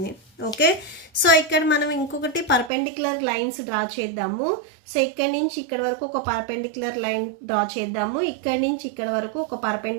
ఓకే, సో ఇక్కడ మనం ఇంకొకటి పర్పెండిక్యులర్ లైన్స్ డ్రా చేద్దాము. సో ఇక్కడి నుంచి ఇక్కడ వరకు ఒక పర్పెండిక్యులర్ లైన్ డ్రా చేద్దాము, ఇక్కడి నుంచి ఇక్కడ వరకు ఒక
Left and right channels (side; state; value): left; drops out; at 2.7 s